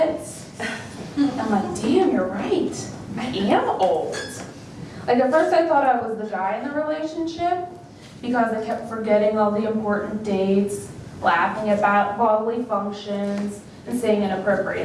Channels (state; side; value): identical; both; correlation 1.00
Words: I'm like, damn, you're right. I am old. Like at first I thought I was the guy in the relationship, because I kept forgetting all the important dates, laughing about bodily functions, and saying